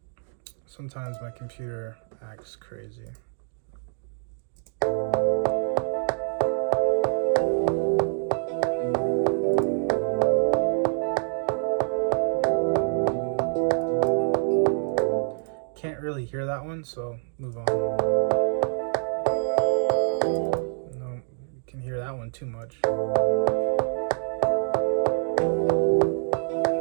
Sometimes my computer acts crazy. Can't really hear that one, so move on. No, you can hear that one too much.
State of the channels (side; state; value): left; silent; digital silence